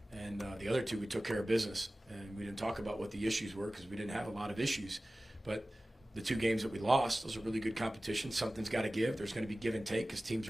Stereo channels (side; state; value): both; normal; correlation 0.97